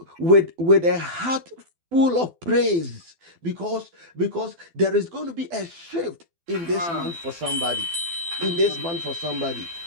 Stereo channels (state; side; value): late; left; 12 ms